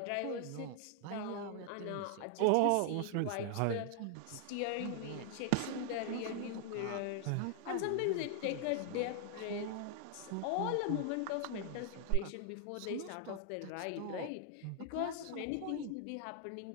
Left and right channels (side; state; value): both; different; correlation 0.00